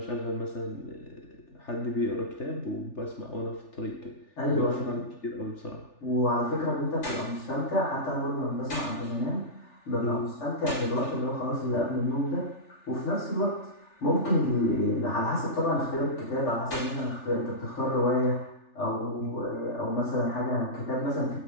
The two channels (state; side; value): late; right; 3.4 ms